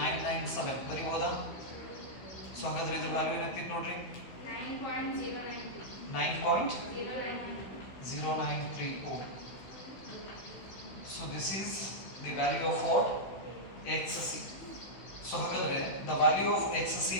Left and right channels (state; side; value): late; right; 16 ms